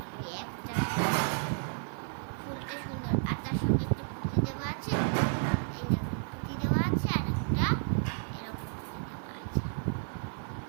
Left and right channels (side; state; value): left; silent; digital silence